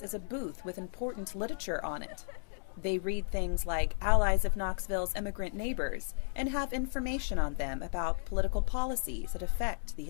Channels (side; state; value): right; silent; digital silence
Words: is a booth with important literature on it. They read things like Allies of Knoxville's Immigrant Neighbors and have information on them about political policies that affect the